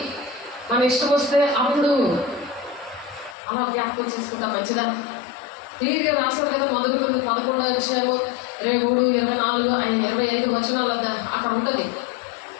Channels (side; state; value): right; drops out; at 3.4 s